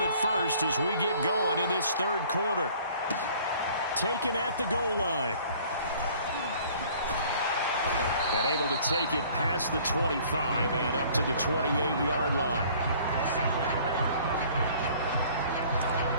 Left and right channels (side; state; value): both; inverted; correlation -0.53